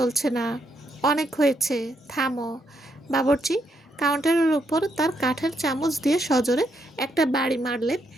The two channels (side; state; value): both; normal; correlation 0.77